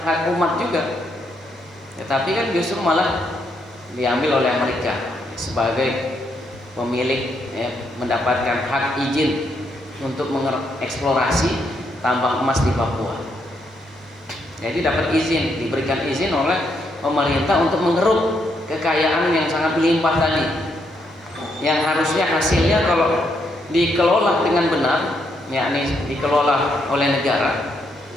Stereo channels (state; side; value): normal; both; correlation 0.76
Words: hak umat juga, ya, tapi kan justru malah diambil oleh Amerika sebagai pemilik, ya, mendapatkan hak izin untuk mengeksplorasi tambang emas di Papua. Jadi dapat izin, diberikan izin oleh pemerintah untuk mengeruk kekayaan yang sangat melimpah tadi, yang harusnya hasilnya kalau dikelola dengan benar, yakni dikelola oleh negara,